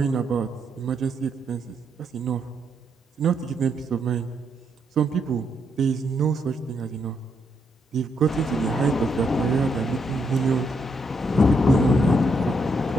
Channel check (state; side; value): normal; both; correlation 0.77